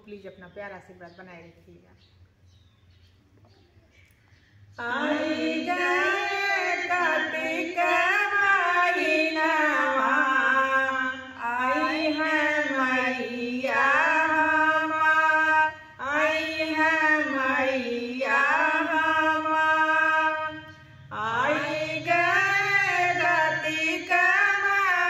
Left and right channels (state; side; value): identical; both; correlation 1.00